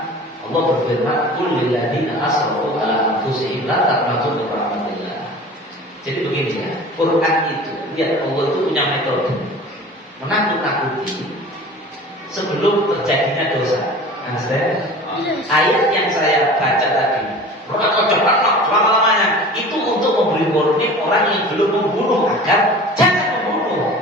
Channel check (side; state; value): both; normal; correlation 0.40